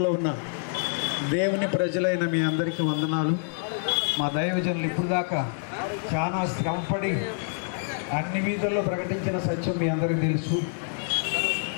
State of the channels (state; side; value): silent; right; digital silence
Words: ఉన్న దేవుని ప్రజలైన మీ అందరికీ వందనాలు. మా దైవజనులు ఇప్పుడు దాకా చాలా శ్రమపడి అన్ని వీధుల్లో ప్రకటించిన సత్యం మీ అందరికీ తెలుసు.